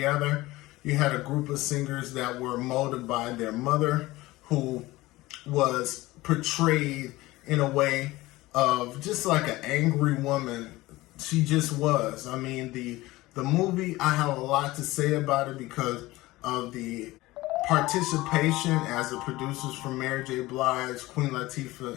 You had a group of singers that were molded by their mother, who was portrayed in a way of just like an angry woman. She just was. I mean, the movie, I have a lot to say about it because of the participation as the producers from Mary J. Blige, Queen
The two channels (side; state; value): right; quieter; 19.0 dB